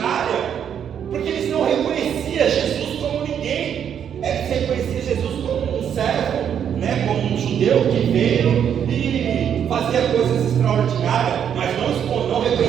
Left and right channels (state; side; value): quieter; left; 8.6 dB